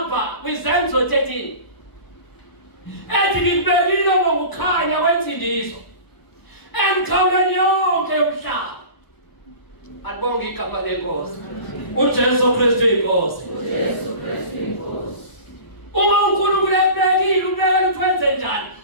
kwiZenzo 13 ethi ngibekile ngokukhanya kwensindiso emkhawulweni yonke umhlaba. Alibonge igama lenkosi. uJesu Kristu inkosi. uJesu Kristu inkosi. Uma uNkulunkulu ebekile ubekela ukwenze njani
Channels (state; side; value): late; right; 1.0 ms